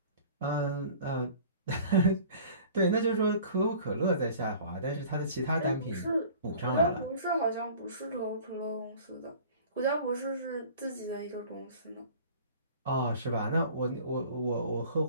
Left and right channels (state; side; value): inverted; both; correlation -0.45